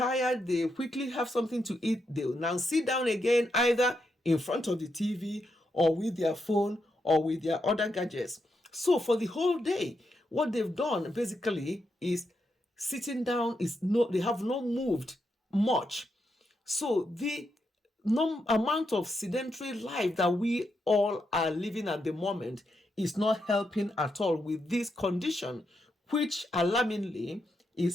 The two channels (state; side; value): normal; both; correlation 0.83